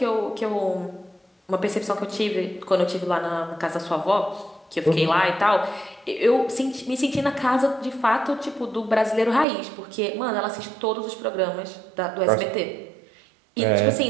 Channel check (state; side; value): drops out; left; at 9.5 s